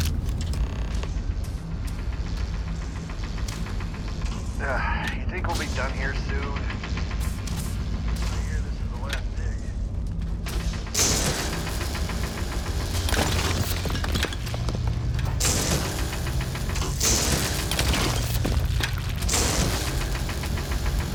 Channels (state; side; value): identical; both; correlation 1.00